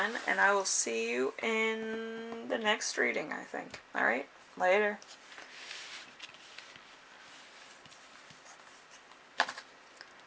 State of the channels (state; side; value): identical; both; correlation 1.00